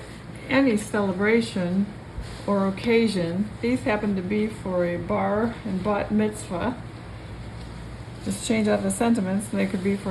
any celebration or occasion. These happen to be for a bar and bat mitzvah. Just change out the sentiments and they could be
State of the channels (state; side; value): identical; both; correlation 1.00